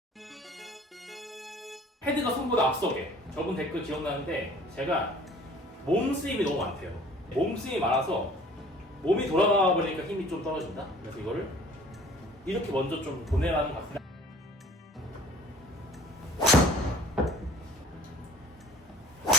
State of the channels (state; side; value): normal; both; correlation 0.50